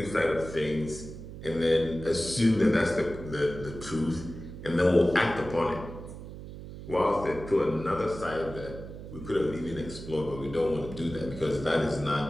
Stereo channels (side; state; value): right; noise; hum, 12 dB below the sound